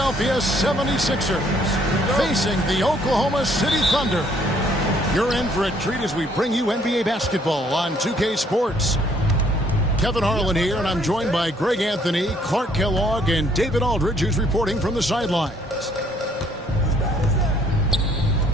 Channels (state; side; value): normal; both; correlation 0.64